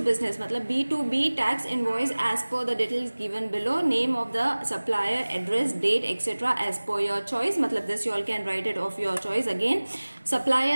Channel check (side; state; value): both; inverted; correlation -1.00